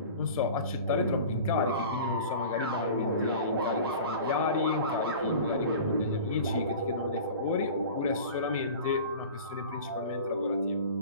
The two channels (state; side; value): inverted; both; correlation -0.38